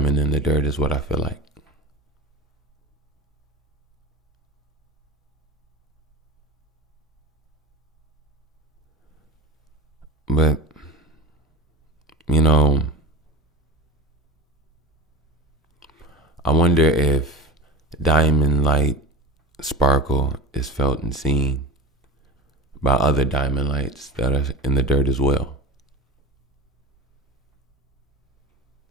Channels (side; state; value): both; normal; correlation 0.31